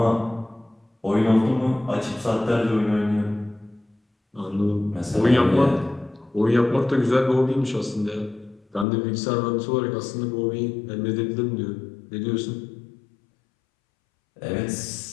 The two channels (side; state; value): right; drops out; at 8.8 s